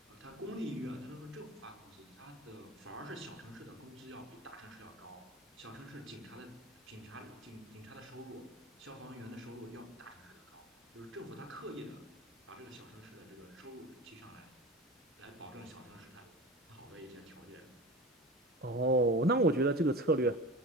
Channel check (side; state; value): both; normal; correlation 0.32